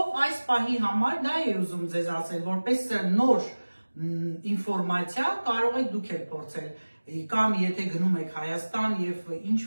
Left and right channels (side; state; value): both; inverted; correlation -1.00